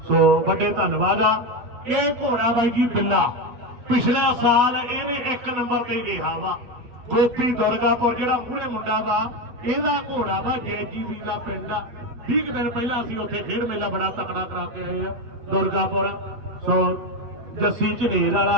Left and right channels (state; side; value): late; left; 8.4 ms